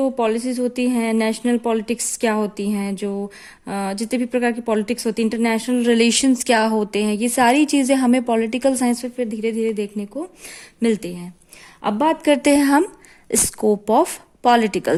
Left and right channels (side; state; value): both; identical; correlation 1.00